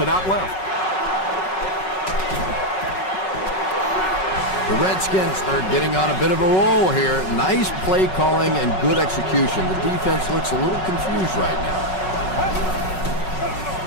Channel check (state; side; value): late; right; 5.4 ms